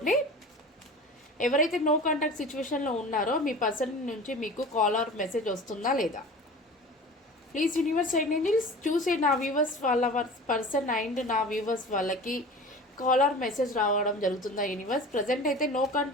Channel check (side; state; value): both; normal; correlation 0.37